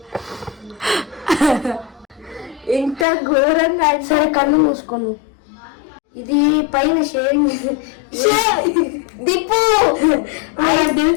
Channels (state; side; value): drops out; right; at 3.1 s